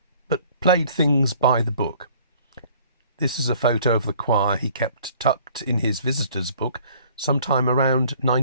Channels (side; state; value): both; inverted; correlation -0.55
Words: but played things by the book. This is a photo of the choir he kept tucked in his visitor's book sometime around